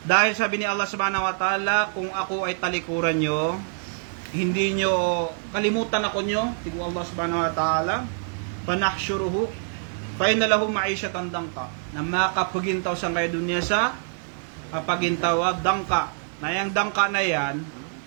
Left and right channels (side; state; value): left; silent; 59 dB below the other